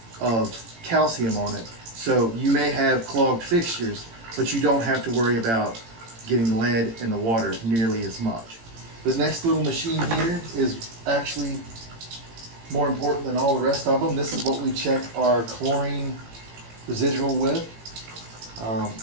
of calcium on it. So you may have clogged fixtures, but you don't have to worry about getting lead in the water nearly as much. The next little machine here is actually more important than all the rest of them. This is what we check our chlorine residual with.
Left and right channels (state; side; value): late; left; 18 ms